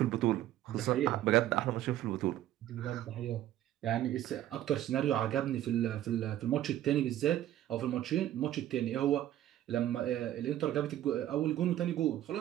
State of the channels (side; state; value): left; quieter; 12.9 dB